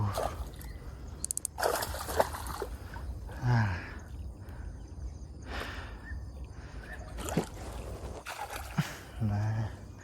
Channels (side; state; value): both; identical; correlation 1.00